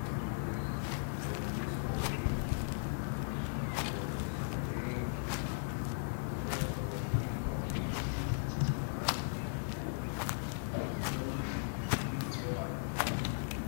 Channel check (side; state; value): right; silent; digital silence